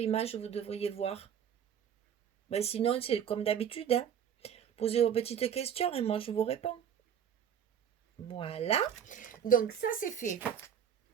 vous devriez voir. Ben, sinon, c'est comme d'habitude, hein. Posez vos petites questions et moi, je vous réponds. Voilà. Donc, ça, c'est fait.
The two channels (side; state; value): left; quieter; 8.6 dB